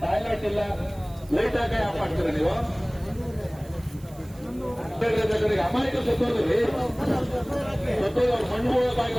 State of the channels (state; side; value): noise; right; hiss, 25 dB below the sound